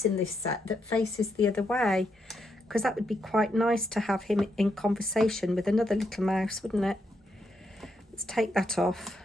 in this set that faces the other way, because that would be quite nice to have him in conversation with another little mouse, wouldn't it? Let's take that off.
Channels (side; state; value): both; normal; correlation 0.80